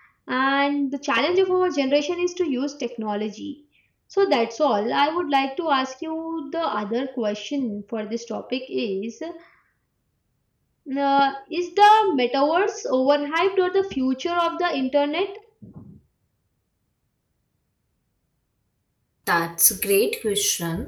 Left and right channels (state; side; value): identical; both; correlation 1.00